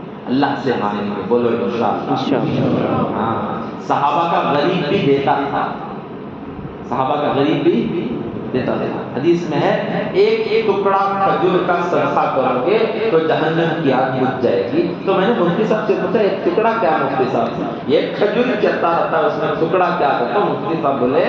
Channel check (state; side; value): identical; both; correlation 1.00